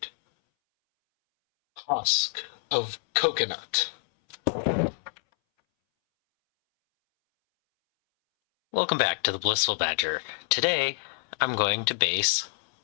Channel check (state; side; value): silent; right; 60 dB below the other